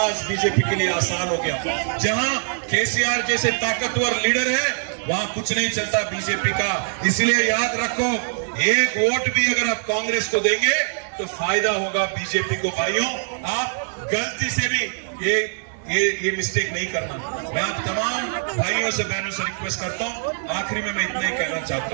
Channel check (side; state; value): left; silent; digital silence